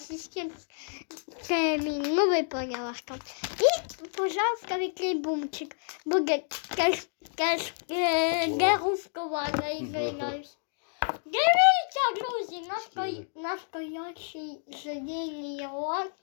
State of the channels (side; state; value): right; silent; digital silence